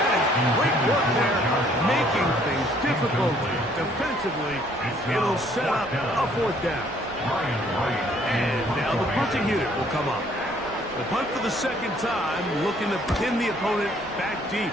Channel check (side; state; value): both; normal; correlation 0.62